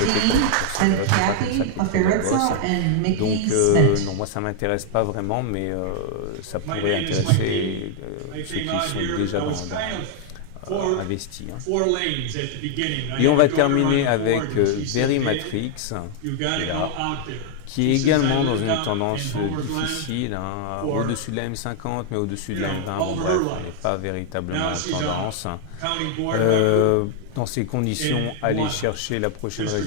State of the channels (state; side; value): different; both; correlation 0.00